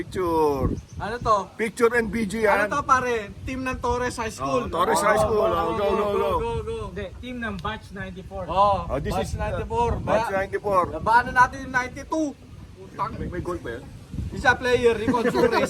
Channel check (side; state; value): both; identical; correlation 1.00